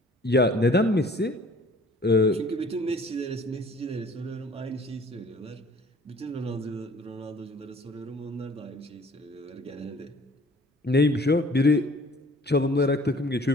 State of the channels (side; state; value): both; normal; correlation 0.52